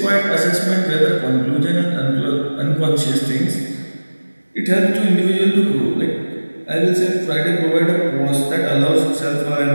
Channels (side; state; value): both; inverted; correlation -1.00